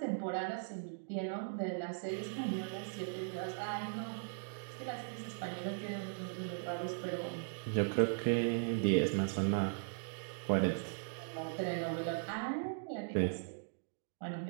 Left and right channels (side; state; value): left; silent; digital silence